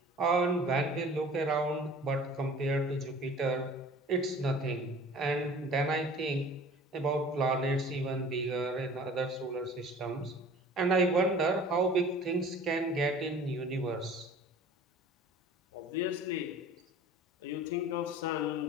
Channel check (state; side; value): normal; both; correlation 0.45